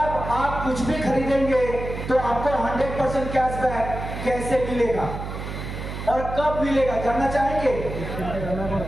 आप कुछ भी खरीदेंगे तो आपको 100% कैशबैक कैसे मिलेगा और कब मिलेगा, जानना चाहेंगे?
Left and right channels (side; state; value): right; noise; hum, 7 dB below the sound